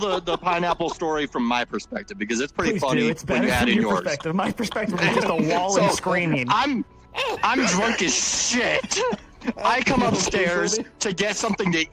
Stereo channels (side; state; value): both; identical; correlation 1.00